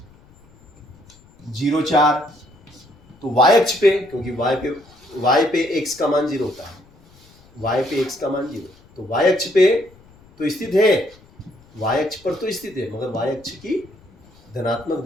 0 4 तो y अक्ष पे, क्योंकि y पे x का मान 0 होता है, y पे x का मान 0, तो y अक्ष पे तो स्थित है, y अक्ष पर तो स्थित है मगर y अक्ष की धनात्मक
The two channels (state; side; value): noise; left; rumble, 27 dB below the sound